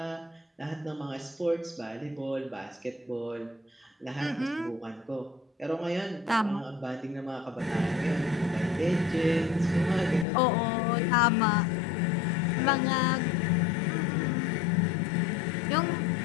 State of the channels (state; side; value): drops out; right; at 10.2 s